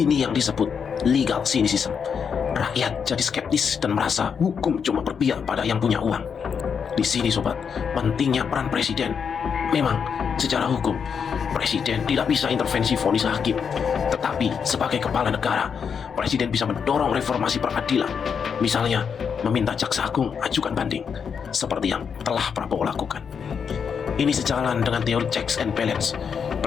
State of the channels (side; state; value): right; quieter; 6.7 dB